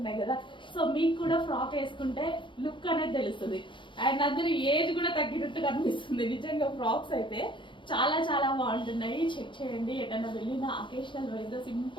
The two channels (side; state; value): right; late; 0.24 ms